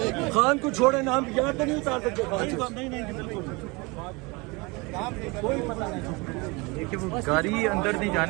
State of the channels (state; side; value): quieter; left; 26.6 dB